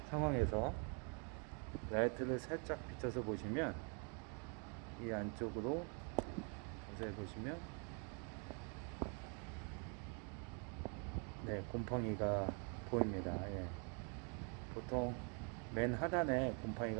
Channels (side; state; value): left; quieter; 37.8 dB